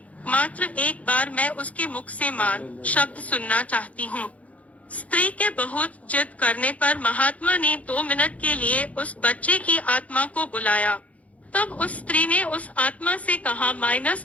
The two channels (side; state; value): right; late; 0.067 ms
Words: मात्र एक बार मैं उसके मुख से मान शब्द सुनना चाहती हूँ। स्त्री के बहुत जिद करने पर महात्मा ने 2 मिनट के लिए उस बच्चे की आत्मा को बुलाया। तब उस स्त्री ने उस आत्मा से कहा,